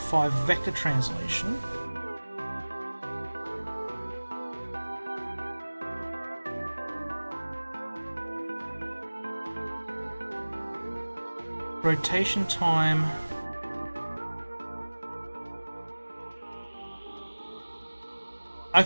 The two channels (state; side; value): inverted; both; correlation -1.00